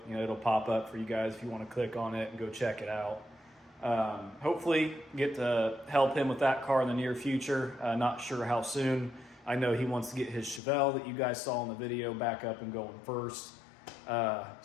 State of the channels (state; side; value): drops out; right; at 10.6 s